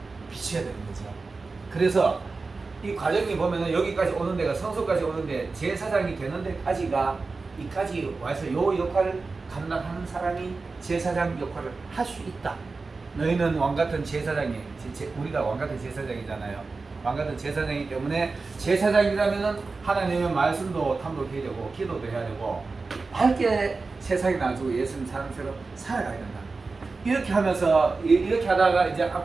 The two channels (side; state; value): left; quieter; 4.0 dB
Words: 비춰야 되는 거죠. 그래서 이 과정이 보면은 여기까지 오는 데가 성소까지 오는데 제사장이 되는 데까지가 이까지 와서 요 역할을 감당하는 사람이 제사장 역할을 할 수 있다. 너희는 왕같은 제사장이 우리가 왕같은 제사장이잖아요. 왕같은 제사장이기 때문에 제사장이라면은 하나님의 말씀도 탐독해야 되고 기도도 해야 되고 밝게 세상에 나가지고 예수님 사람처럼 살아가야 된다. 이렇게 하면서 이렇게 하다가 이제